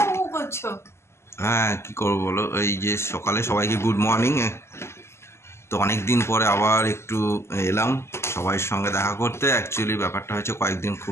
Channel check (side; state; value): right; late; 0.13 ms